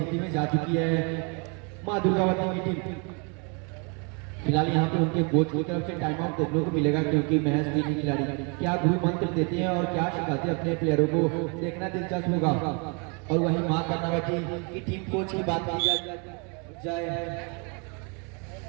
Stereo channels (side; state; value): left; quieter; 34.5 dB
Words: में जा चुकी है मां दुर्गावती की टीम। फिलहाल यहाँ पे उनके कोच की तरफ से टाइम आउट देखने को मिलेगा क्योंकि महज 3 खिलाड़ी क्या गुरु मंत्र देते हैं और क्या सिखाते हैं अपने प्लेयरों को, देखना दिलचस्प होगा। और वही मां कर्णावती की टीम कोच की बात की जाए